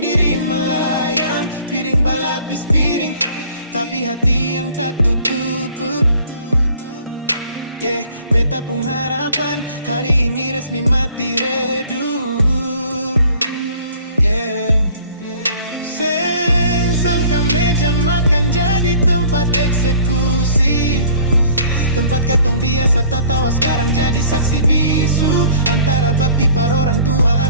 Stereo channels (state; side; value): inverted; both; correlation -0.52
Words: diri melayang. Piring balapis piring, tapi hati yang tak tutup. Yeah, beta pun harapan hari ini resmi mati redup. Yeah, seng sangka meja makan jadi tempat eksekusi. Tempat katong biasa tak tawa sekarang jadi saksi bisu. Antara bakti par orang tua